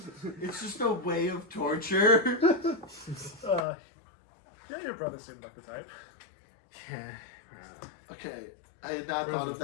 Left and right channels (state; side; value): drops out; right; at 3.6 s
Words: it's just a way of torture. Yeah, your brother seemed like the type. Yeah. Okay, I had not Where's thought the of